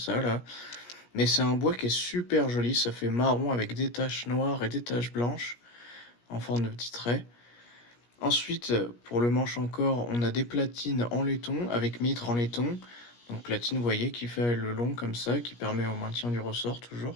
là. Mais c'est un bois qui est super joli. Ça fait marron avec des taches noires et des taches blanches en forme de petits traits. Ensuite, pour le manche encore, on a des platines en laiton avec mitre en laiton. Donc platine, vous voyez, qui fait le long comme ça, qui permet au maintien du ressort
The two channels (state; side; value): late; right; 17 ms